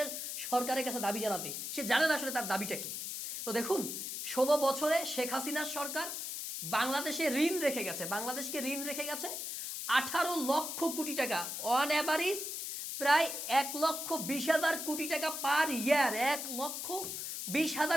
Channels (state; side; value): noise; left; hiss, 5 dB below the sound